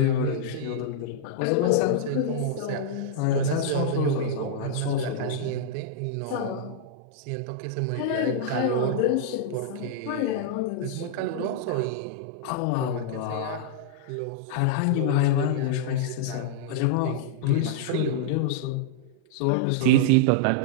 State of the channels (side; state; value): both; different; correlation -0.02